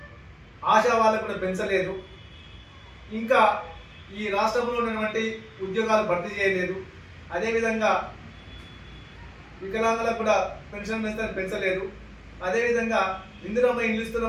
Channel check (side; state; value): both; identical; correlation 1.00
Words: ఆశా వాళ్ళకు కూడా పెంచలేదు. ఇంకా ఈ రాష్ట్రంలో ఉన్నటువంటి ఉద్యోగాలు భర్తీ చేయలేదు. అదేవిధంగా వికలాంగులకు కూడా పెన్షన్ పెంచలేదు. అదేవిధంగా ఇందిరమ్మ ఇల్లు